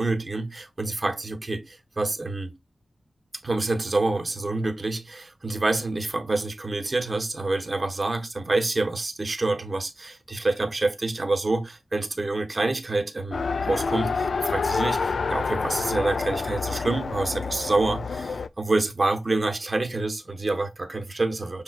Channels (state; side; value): normal; both; correlation 0.93